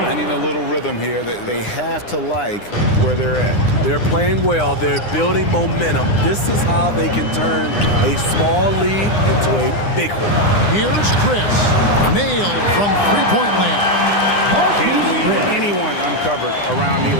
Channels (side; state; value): right; late; 9.8 ms